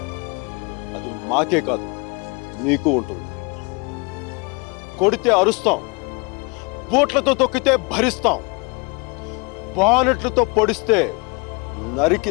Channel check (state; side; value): quieter; right; 30.4 dB